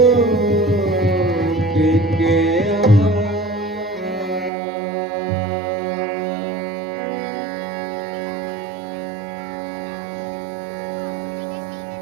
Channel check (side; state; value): left; drops out; at 4.5 s